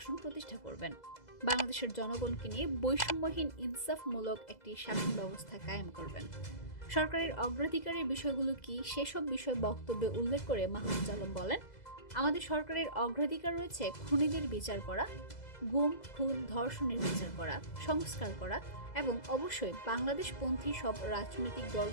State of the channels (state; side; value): late; right; 2.0 ms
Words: প্রতিষ্ঠা করবেন। বাংলাদেশের জনগণকে নিয়ে বৈষম্যহীন ইনসাফমূলক একটি শাসন ব্যবস্থা কায়েম করবেন। সরকারের অগ্রাধিকারের বিষয়গুলো কি সেসব বিষয় বক্তব্যে উল্লেখ করে মাহফুজ আলম বলেন, আমাদের সরকারের অগ্রাধিকার রয়েছে খুনিদের বিচার করা, গুম, খুন, ধর্ষণের বিচার করা, সংস্কার করা এবং অবশ্যই বাংলাদেশপন্থী সব রাজনৈতিক